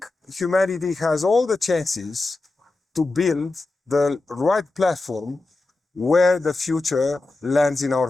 humanity has all the chances to build the right platform where the future lands in our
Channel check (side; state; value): right; quieter; 3.2 dB